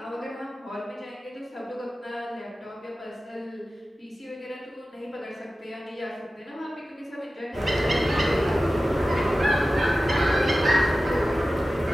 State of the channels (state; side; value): normal; both; correlation 0.95